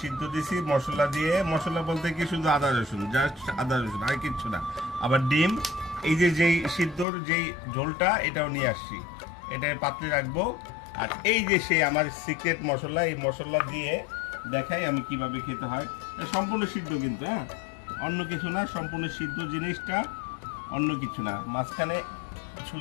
সিদ্ধ দিছি মশলা দিয়ে। মশলা বলতে কি, শুধু আদা রসুন, জাস্ট আদা রসুন, আর কিচ্ছু না। আবার ডিম, এই যে যেই সিদ্ধর যেই ঝোলটা, এটাও নিয়ে আসছি, এটা পাত্রে রাখবো। আর এই যে সেই আমার সিক্রেট মশলা, এই মশলা দিয়ে দেখাই আমি কিভাবে খেতে হয়। এটা সম্পূর্ণ সিদ্ধ কিন্তু, হ্যাঁ, অন্য কিছু না, সম্পূর্ণ সিদ্ধ জিনিসটা, অন্য কিছু না। মাঝখানে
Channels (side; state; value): right; drops out; at 7.1 s